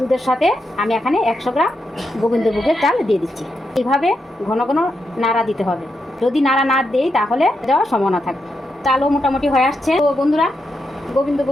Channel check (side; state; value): both; normal; correlation 0.84